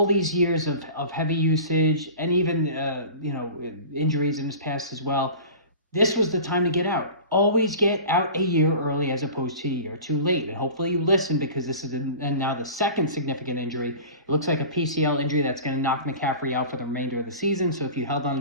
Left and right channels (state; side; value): inverted; both; correlation -0.38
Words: these years of heavy usage, and even injuries in his past as well. This was the time to get out. Always get out a year early as opposed to a year too late. And hopefully you listen, because this is now the second significant injury. It looks like a PCL injury that's going to knock McCaffrey out for the remainder of the season. So if you held on